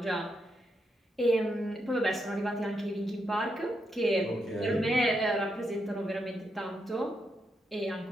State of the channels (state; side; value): normal; both; correlation 0.82